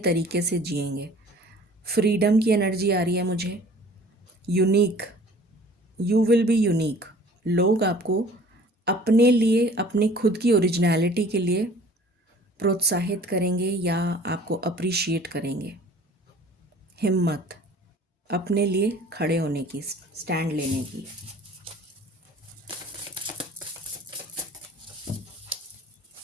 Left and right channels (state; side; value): normal; both; correlation 0.49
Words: से जिएंगे। फ्रीडम की एनर्जी आ रही है मुझे। Unique, you will be unique, लोग आपको अपने लिए, अपनी खुद की ओरिजिनलिटी के लिए प्रोत्साहित करेंगे या आपको अप्रिशिएट करेंगे। हिम्मत, अपने लिए खड़े होने की, स्टैंड लेने की।